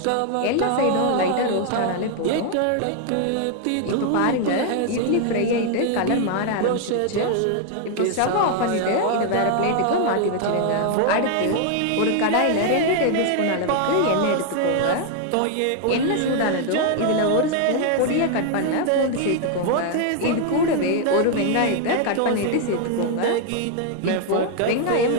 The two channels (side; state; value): both; different; correlation 0.00